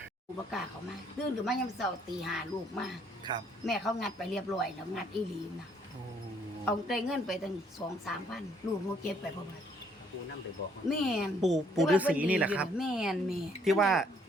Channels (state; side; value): normal; both; correlation 0.66